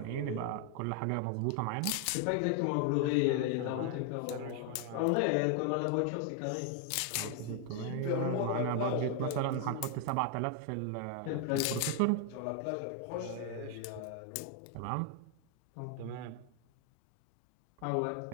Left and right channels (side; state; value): both; different; correlation 0.00